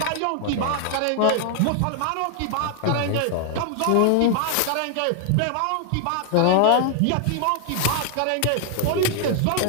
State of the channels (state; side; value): different; both; correlation 0.00